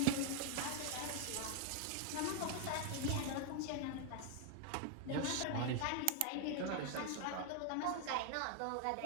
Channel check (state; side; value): different; both; correlation 0.00